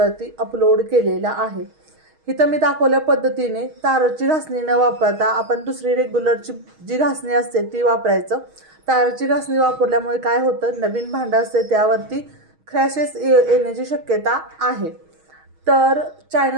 अपलोड केलेला आहे। इथं मी दाखवल्या पद्धतीने ताराची घासणी न वापरता आपण दुसरी रेग्युलरची जी घासणी असते ती वापरायचं। ताराची घासणी वापरल्यामुळे काय होतं, नवीन भांडं असते त्यावरती क्रॅशेस येण्याची शक्यता आहे। तर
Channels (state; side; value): late; left; 6.3 ms